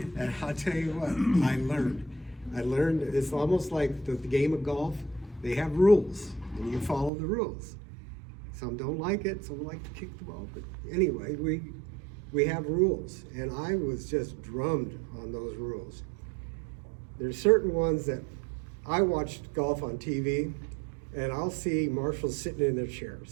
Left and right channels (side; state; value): left; drops out; at 7.1 s